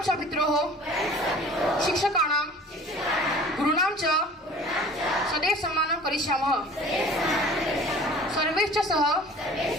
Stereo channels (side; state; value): both; normal; correlation 0.46